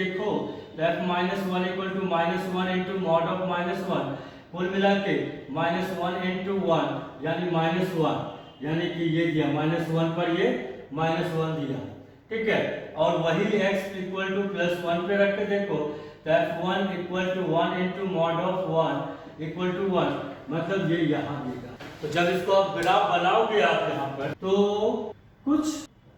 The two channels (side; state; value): both; identical; correlation 1.00